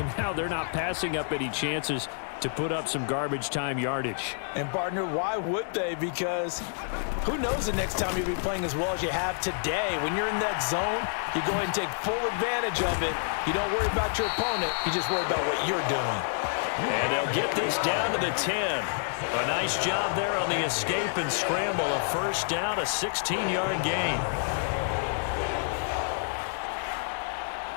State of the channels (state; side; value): silent; right; digital silence